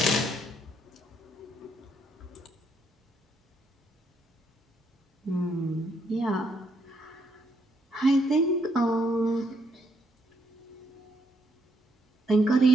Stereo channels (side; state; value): both; normal; correlation 0.74